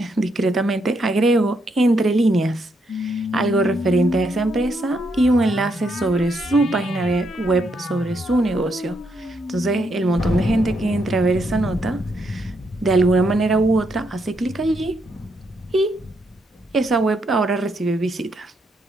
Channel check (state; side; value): normal; both; correlation 0.77